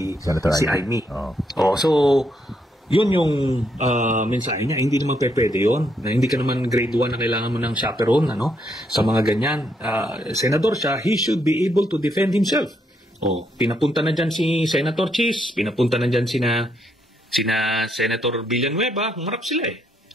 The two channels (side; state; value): both; normal; correlation 0.76